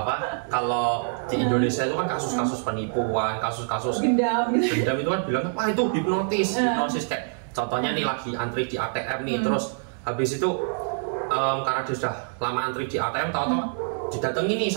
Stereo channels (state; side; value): silent; left; digital silence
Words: apa kalau di Indonesia itu kan kasus-kasus penipuan, kasus-kasus gendam itu kan bilang wah itu hipnotis kayak contohnya nih lagi antri di ATM nih, terus habis itu karena dia sudah lama antri di ATM, tahu-tahu didatangi nih